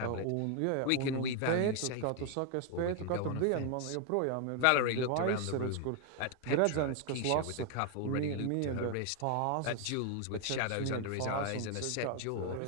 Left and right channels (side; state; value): both; different; correlation 0.00